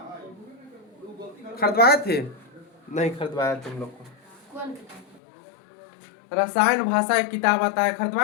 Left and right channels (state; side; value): drops out; right; at 5.2 s